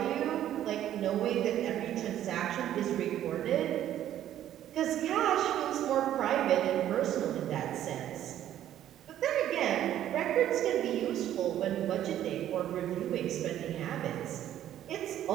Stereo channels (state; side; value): quieter; left; 11.7 dB